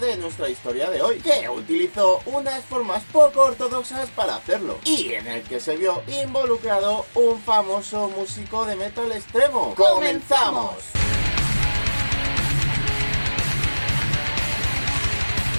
nuestra historia de hoy, que utilizó unas formas poco ortodoxas para hacerlo, y en el que se vio involucrado un famoso músico de metal extremo. ¡Comenzamos!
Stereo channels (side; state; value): both; inverted; correlation -1.00